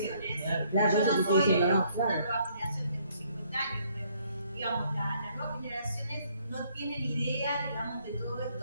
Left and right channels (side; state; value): both; inverted; correlation -0.66